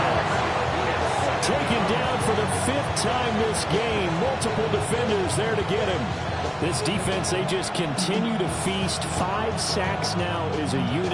Taken down for the fifth time this game. Multiple defenders there to get him. This defense, they just continue to feast. 5 sacks now as a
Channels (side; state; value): both; identical; correlation 1.00